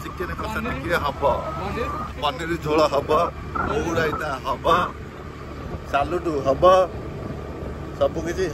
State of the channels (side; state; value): both; identical; correlation 1.00